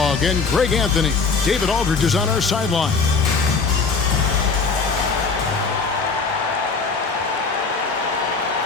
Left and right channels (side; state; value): right; quieter; 4.7 dB